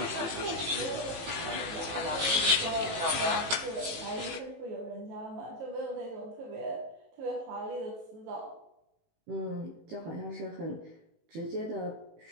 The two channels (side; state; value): left; late; 18 ms